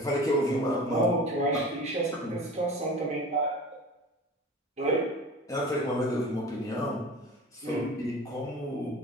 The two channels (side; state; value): both; normal; correlation 0.37